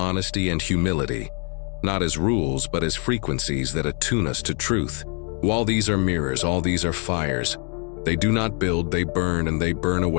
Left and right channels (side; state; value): right; quieter; 38.9 dB